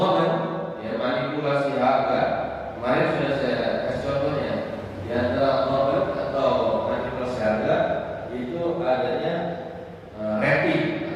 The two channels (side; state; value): both; identical; correlation 1.00